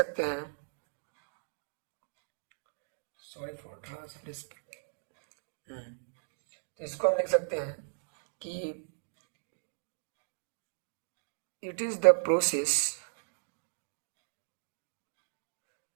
हैं, सॉरी फॉर ट्रांसलेशन, तो इसको हम लिख सकते हैं कि it is the process,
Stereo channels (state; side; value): silent; left; digital silence